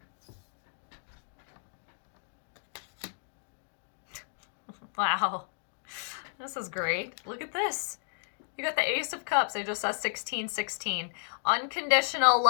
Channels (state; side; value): silent; right; digital silence